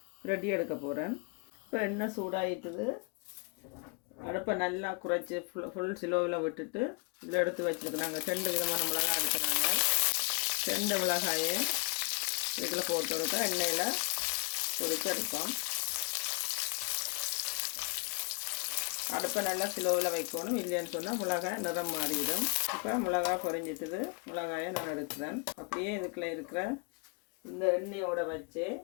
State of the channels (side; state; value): right; quieter; 33.2 dB